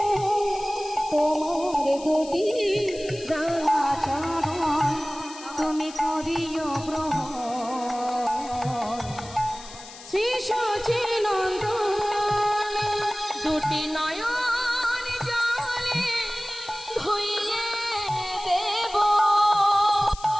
তোমার দুটি রাঙা চরণ তুমি করিও গ্রহণ শ্রী সচিনন্দন দুটি নয়ন জলে ধুইয়ে দেব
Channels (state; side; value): noise; left; hiss, 16 dB below the sound